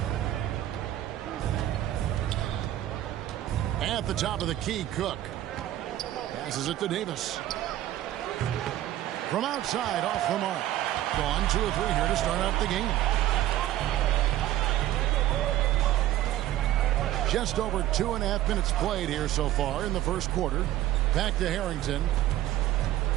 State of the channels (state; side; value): quieter; left; 13.8 dB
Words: At the top of the key, Cook. Passes it to Davis. From outside, off the mark. Gone 2 of 3 here to start out the game. Just over 2.5 minutes played here so far in the first quarter. Back to Harrington.